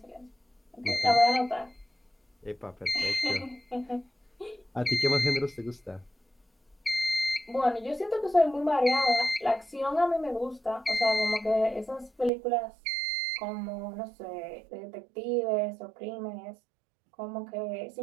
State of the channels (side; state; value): left; drops out; at 12.3 s